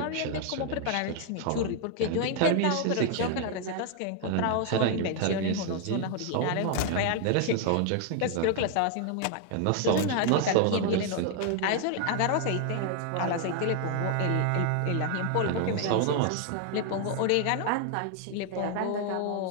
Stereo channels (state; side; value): different; both; correlation 0.00